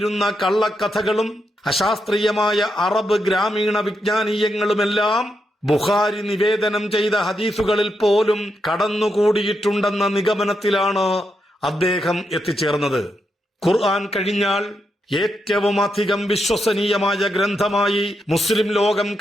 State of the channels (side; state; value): both; normal; correlation 0.83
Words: കള്ളക്കഥകളും അശാസ്ത്രീയമായ അറബ് ഗ്രാമീണ വിജ്ഞാനീയങ്ങളുമെല്ലാം ബുഖാരി നിവേദനം ചെയ്ത ഹദീസുകളിൽ പോലും കടന്നുകൂടിയിട്ടുണ്ടെന്ന നിഗമനത്തിലാണ് അദ്ദേഹം എത്തിച്ചേർന്നത്. ഖുർആൻ കഴിഞ്ഞാൽ ഏറ്റവും അധികം വിശ്വസനീയമായ ഗ്രന്ഥമായി മുസ്ലിം ലോകം